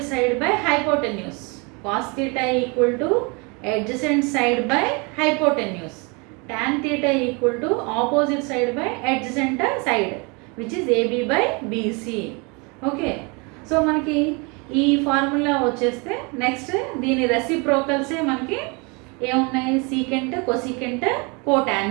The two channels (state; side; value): quieter; left; 30.2 dB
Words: side by hypotenuse. Cos theta equal to adjacent side by hypotenuse. Tan theta equal to opposite side by adjacent side, which is AB/BC. Okay, so మనకి ఈ ఫార్ములా వచ్చేస్తే నెక్స్ట్ దీని రెసిప్రోకల్సే మనకి ఏమున్నాయి, secant, cosecant,